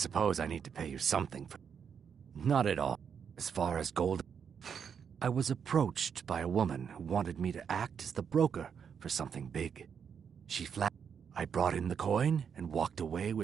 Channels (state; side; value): quieter; left; 7.2 dB